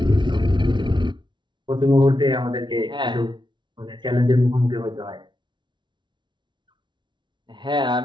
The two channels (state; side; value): late; left; 0.23 ms